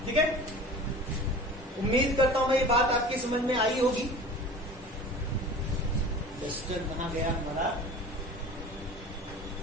ठीक है, उम्मीद करता हूं ये बात आपकी समझ में आई होगी। रजिस्टर कहां गया हमारा,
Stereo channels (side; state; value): both; normal; correlation 0.39